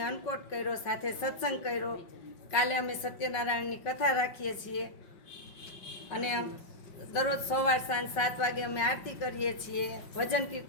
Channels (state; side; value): late; right; 5.4 ms